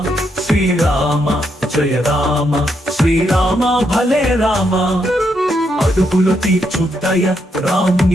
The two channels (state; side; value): normal; both; correlation 0.79